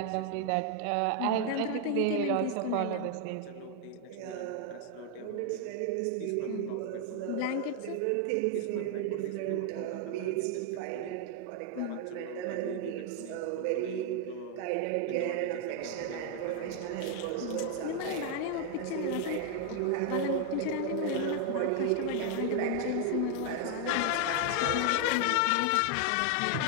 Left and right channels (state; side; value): different; both; correlation 0.00